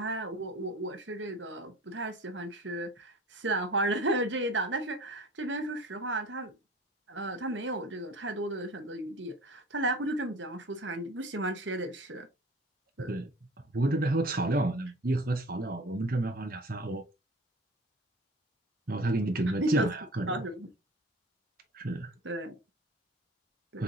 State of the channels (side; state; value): both; normal; correlation 0.42